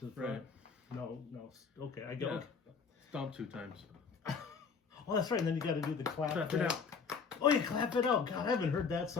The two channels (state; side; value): quieter; right; 5.7 dB